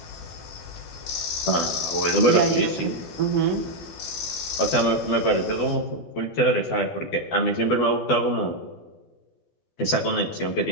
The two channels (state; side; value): late; right; 12 ms